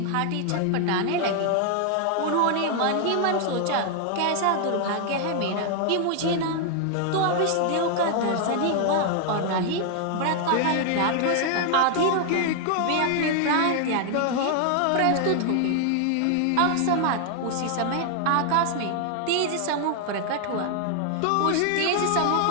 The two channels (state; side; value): different; both; correlation 0.00